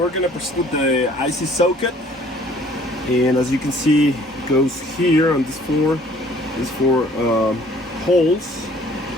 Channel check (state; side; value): normal; both; correlation 0.56